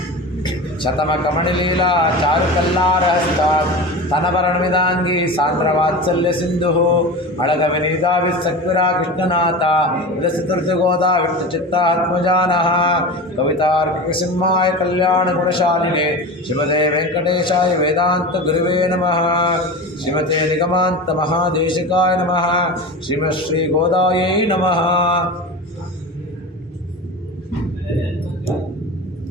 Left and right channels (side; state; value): both; normal; correlation 0.29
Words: ಶತಮ ಕಮಣಿಲೀಲಾ ಚಾರು ಕಲ್ಲಾರಹಸ್ತ ತನವರಣವಿದಾಂಗಿ ಸಾಂದ್ರ ವಾತ್ಸಲ್ಯ ಸಿಂಧು ಅಳಗ ವಿನೀದಾವಿ ಸಕ್ವಿರಾ ಕೃಷ್ಣನಾಥ ವಿರಸಿತೃಗೋದಾ ವಿಷ್ಣು ಚಿತ್ತಾತ್ಮಜಾನಃ ಕವಿತಾರ್ಕಿಕ ಸಿಂಹಾಯ ಕಲ್ಯಾಣ ಗುಣಶಾಲಿನಿ ಶ್ರೀಮತೆ ವೆಂಕಟೇಶಾಯ ವೇದಾಂತ ಗುರುವೇ ನಮಃ. ಶ್ರೀಮತೆ ನಿಗಮಾಂತ ಮಹಾದೇಶಿಕಾಯ ನಮಃ. ಶ್ರೀಮತ್ ಶ್ರೀ ಗೋದಾಯೈ ನಮಃ.